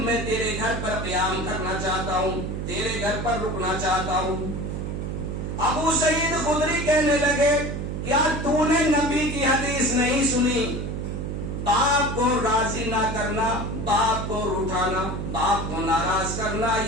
میں تیرے گھر پر قیام کرنا چاہتا ہوں, تیرے گھر پر رکنا چاہتا ہوں. ابو سعید خدری کہنے لگے کیا تو نے نبی کی حدیث نہیں سنی, باپ کو راضی نہ کرنا, باپ کو روٹھانا, باپ کو ناراض کرنا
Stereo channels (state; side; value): noise; right; hum, 4 dB below the sound